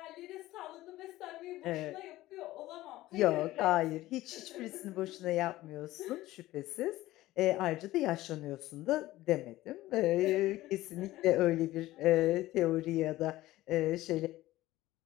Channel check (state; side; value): quieter; right; 16.6 dB